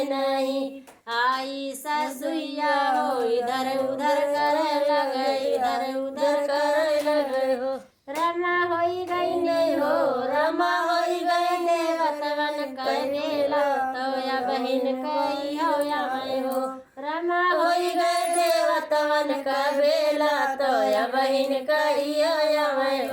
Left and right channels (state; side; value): identical; both; correlation 1.00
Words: नहीं। आई ससुइया हो इधर उधर करे लगे, इधर उधर करे लगे हो। रमा होई गई नहीं हो, रमा होई गई देवतवन करेला तो या बहिन कही हो या मैं हो। रमा होई गई देवतवन का बेला तो या बहिन कही हो या मैं